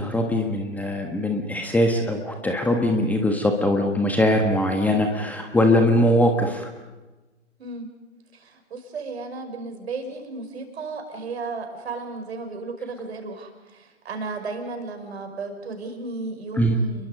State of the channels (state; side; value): normal; both; correlation 0.54